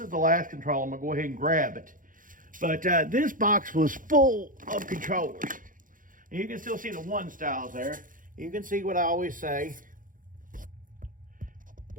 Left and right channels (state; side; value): late; left; 0.39 ms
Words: the last controller. I'm going to go ahead and grab it. But this box was full of controllers. And you can still see the one styles there. You can see what I always say.